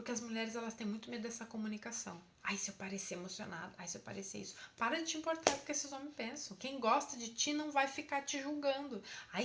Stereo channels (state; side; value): identical; both; correlation 1.00